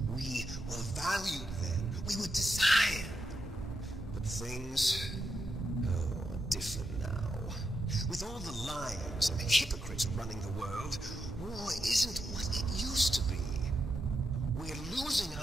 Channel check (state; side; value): normal; both; correlation 0.84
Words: We were valued then. We were desired. But things are different now. With all the liars and the hypocrites running the world, war isn't what it used to be. We're losing